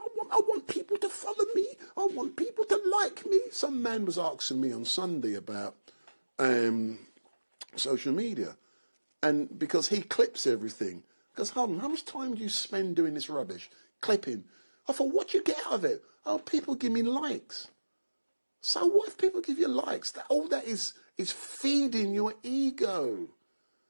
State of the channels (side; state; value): both; inverted; correlation -1.00